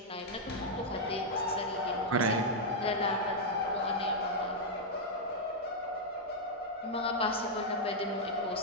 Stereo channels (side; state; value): both; normal; correlation -0.03